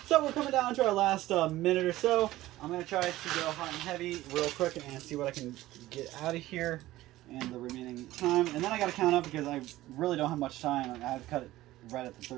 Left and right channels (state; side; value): quieter; left; 16.3 dB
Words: So we're coming down to our last minute or so. I'm going to try to go hot and heavy real quick and see what I can get out of here in the remaining time. And then I got to count up, because I really don't have much time. I've cut it right at the